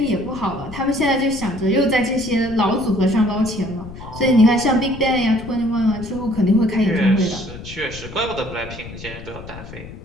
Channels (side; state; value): left; noise; rumble, 14 dB below the sound